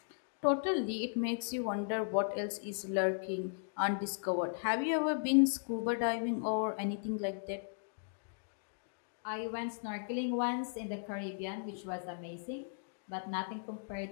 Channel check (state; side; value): silent; right; digital silence